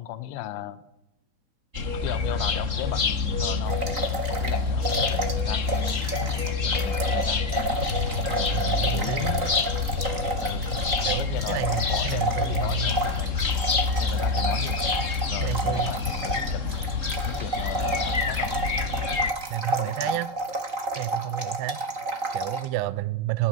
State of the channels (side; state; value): left; late; 3.9 ms